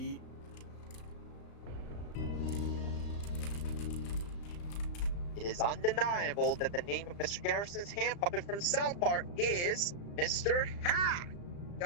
It is undeniable that the name of Mr. Garrison's hand puppet from South Park is Mr. Hat.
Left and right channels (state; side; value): late; right; 35 ms